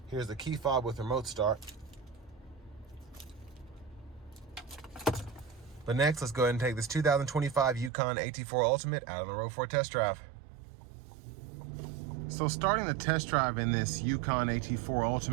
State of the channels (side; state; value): left; drops out; at 7.9 s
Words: here's the key fob with remote start. But next, let's go ahead and take this 2025 Yukon AT4 Ultimate out on the road for a test drive. So starting the test drive in this Yukon AT4